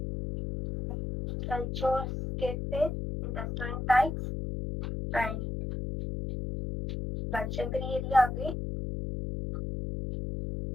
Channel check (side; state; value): left; noise; hum, 4 dB below the sound